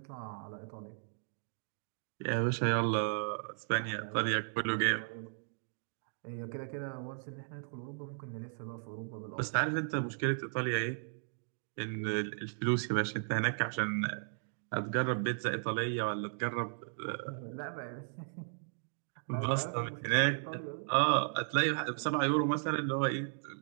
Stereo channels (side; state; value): left; silent; digital silence